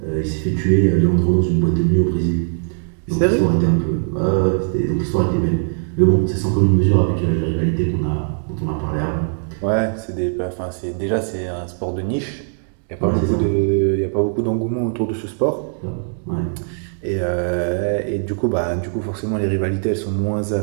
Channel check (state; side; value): silent; left; digital silence